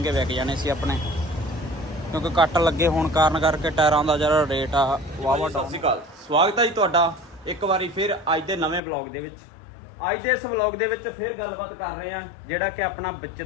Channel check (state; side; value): drops out; right; at 8.8 s